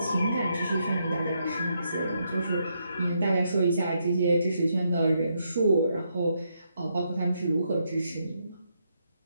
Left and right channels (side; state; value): both; inverted; correlation -0.78